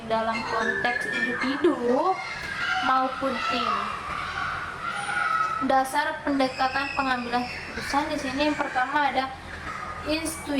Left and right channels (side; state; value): both; identical; correlation 1.00